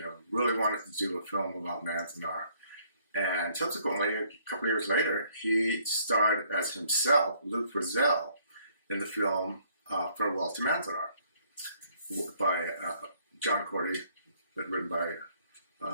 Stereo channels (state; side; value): inverted; both; correlation -0.64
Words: really wanted to do a film about Manzanar. And subsequently, a couple of years later, he starred as himself, Lou Frizzell, in the film Farewell to Manzanar by John Cordy, but written by